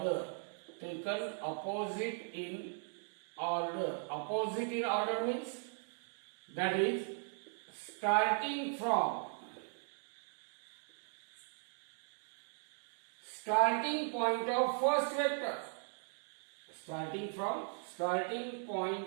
Opposite in order means that is starting point of first vector. Starting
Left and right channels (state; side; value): silent; left; 52 dB below the other